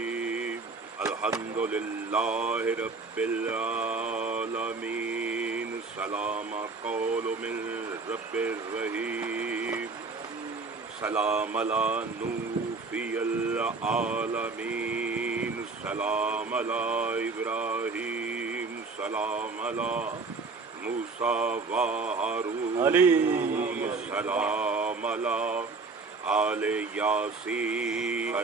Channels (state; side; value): quieter; left; 4.1 dB